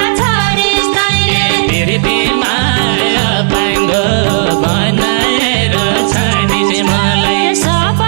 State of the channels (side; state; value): left; silent; digital silence